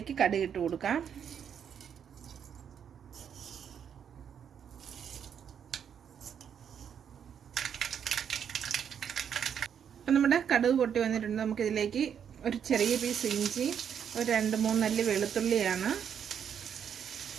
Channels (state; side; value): quieter; left; 8.2 dB